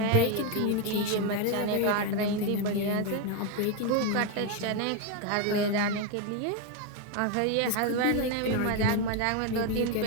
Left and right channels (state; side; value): different; both; correlation 0.02